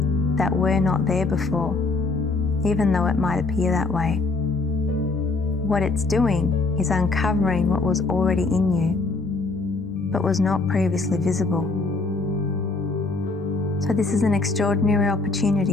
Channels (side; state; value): right; quieter; 3.6 dB